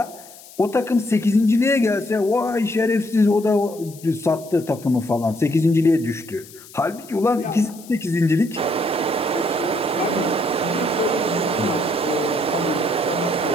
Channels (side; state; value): left; noise; hiss, 20 dB below the sound